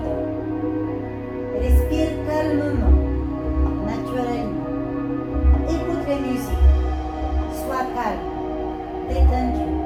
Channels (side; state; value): both; identical; correlation 1.00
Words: Respire calmement, naturellement. Écoute la musique. Sois calme, détendu.